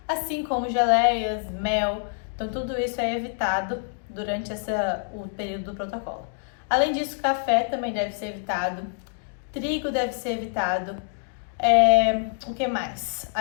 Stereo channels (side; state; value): right; silent; digital silence